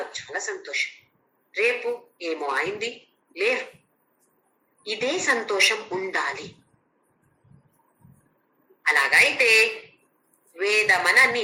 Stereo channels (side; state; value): both; identical; correlation 1.00